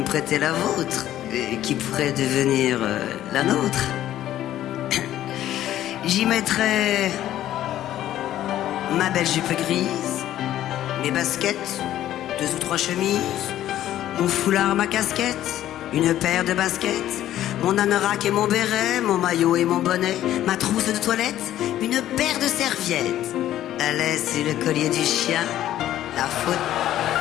prêter la vôtre, qui pourrait devenir la nôtre. J'y mettrais ma belle jupe grise, mes baskets, 2 ou 3 chemises, mon foulard, ma casquette, une paire de baskets, mon anorak et mon béret, mon maillot et mon bonnet, ma trousse de toilette, une paire de serviettes, la laisse et le collier du chien, la faute,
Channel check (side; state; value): right; quieter; 12.7 dB